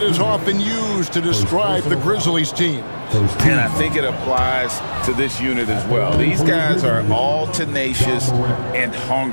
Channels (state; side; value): inverted; both; correlation -1.00